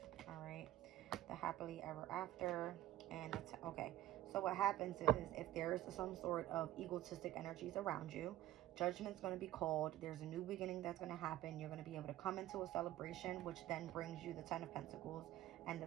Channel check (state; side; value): quieter; left; 13.7 dB